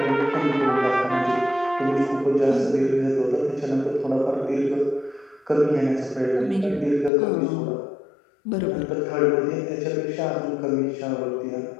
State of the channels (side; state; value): right; drops out; at 7.1 s